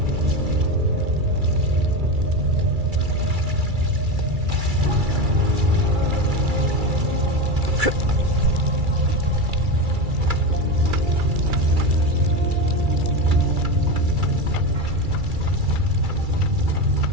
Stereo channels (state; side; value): late; left; 2.3 ms